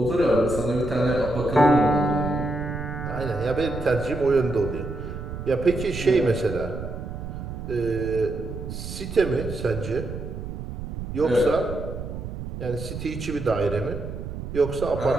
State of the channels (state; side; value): noise; right; rumble, 8 dB below the sound